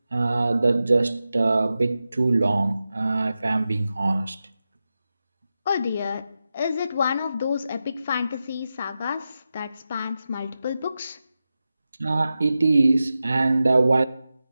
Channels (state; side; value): inverted; both; correlation -0.92